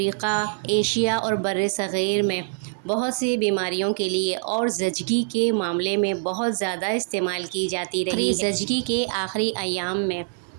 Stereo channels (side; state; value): left; silent; digital silence